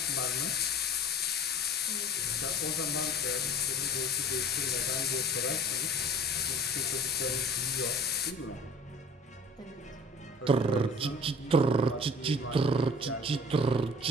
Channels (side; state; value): both; normal; correlation 0.45